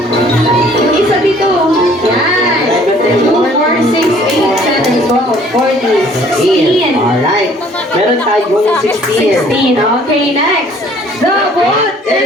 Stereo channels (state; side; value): normal; both; correlation 0.57